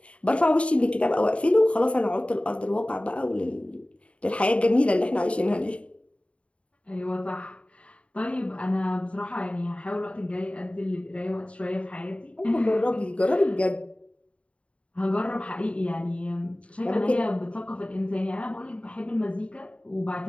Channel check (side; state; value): right; late; 0.061 ms